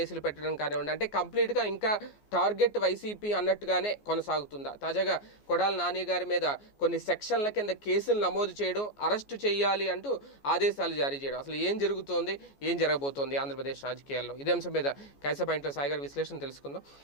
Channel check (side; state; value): right; late; 14 ms